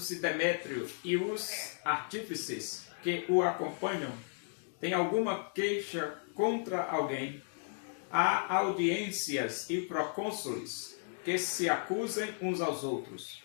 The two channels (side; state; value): right; silent; 55 dB below the other